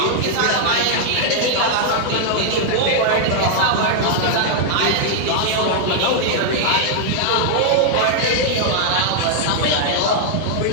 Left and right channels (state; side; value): different; both; correlation -0.01